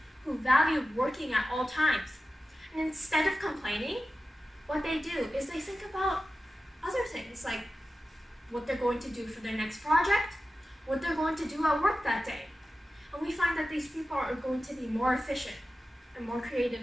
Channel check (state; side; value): normal; both; correlation 0.94